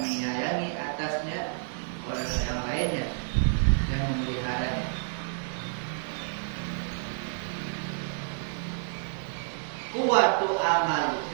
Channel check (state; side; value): silent; left; digital silence